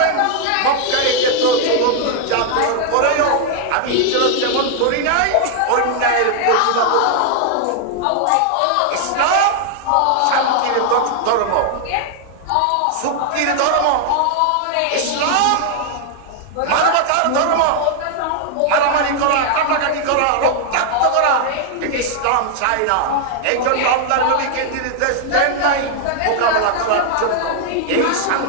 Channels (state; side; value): different; both; correlation 0.00